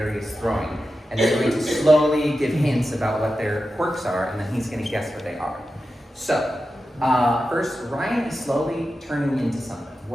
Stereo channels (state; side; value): normal; both; correlation 0.92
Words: is throwing. And they're going to slowly give hints about what their quirks are, and then he's going to guess what they are. So, first, Ryan is slowly turning into something.